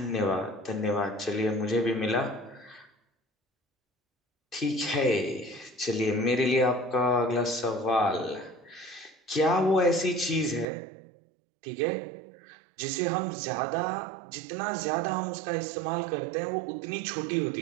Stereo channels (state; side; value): drops out; left; at 10.7 s